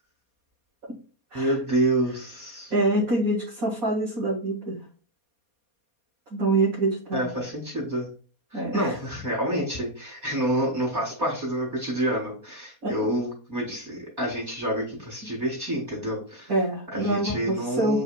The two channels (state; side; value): late; left; 4.2 ms